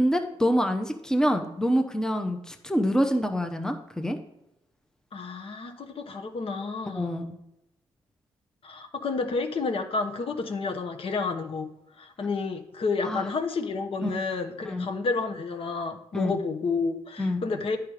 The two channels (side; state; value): both; normal; correlation 0.78